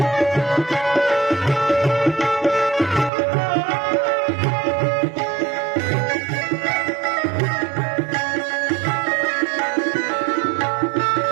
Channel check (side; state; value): left; drops out; at 3.1 s